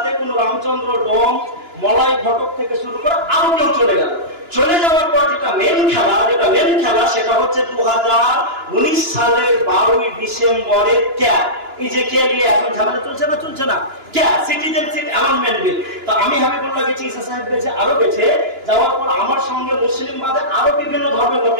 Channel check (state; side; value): late; left; 2.9 ms